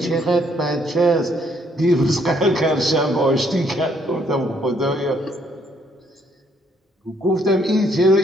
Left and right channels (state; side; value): normal; both; correlation 0.69